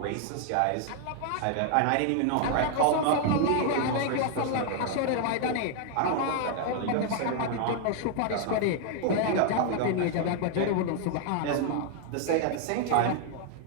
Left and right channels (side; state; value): both; different; correlation 0.00